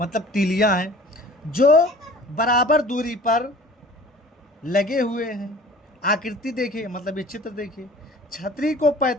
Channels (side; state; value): both; normal; correlation 0.46